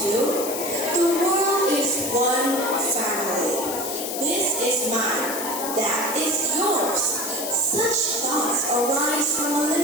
to, the world is one family. This is mine, that is yours. Such thoughts arise from a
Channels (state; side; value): noise; left; hiss, 5 dB below the sound